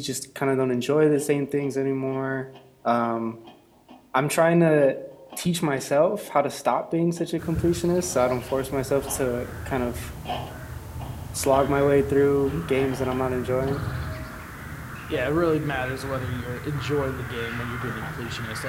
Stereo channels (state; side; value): identical; both; correlation 1.00